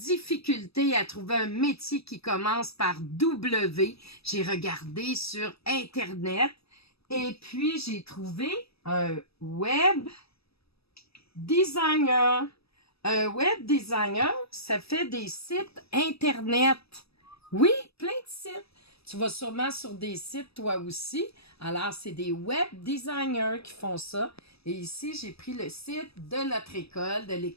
à trouver un métier qui commence par W. J'ai regardé sur Internet et puis j'ai trouvé un web designer. Un web designer, ça fait des sites Internet. Oui, plein de sites. Tu vas sûrement sur des sites toi aussi. Alors, c'est des web designers qui font ça. Et ici, j'ai pris le site de notre école, de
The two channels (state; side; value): late; right; 0.78 ms